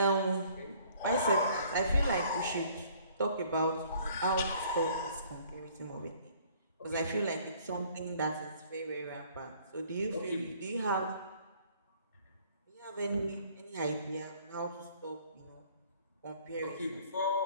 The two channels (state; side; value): inverted; both; correlation -0.58